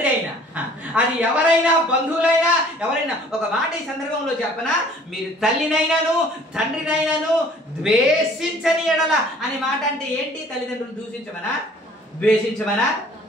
అయినా, అది ఎవరైనా బంధువులైనా ఎవరైనా. ఒక మాట ఈ సందర్భంలో చెప్పనా, మీరు తల్లినైనాను తండ్రినైనాను ద్వేషించని ఎడల అనే మాట అంటే ఏంటి? తల్లిదండ్రులు దూషించమనా, ద్వేషించమనా?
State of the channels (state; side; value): normal; both; correlation 0.53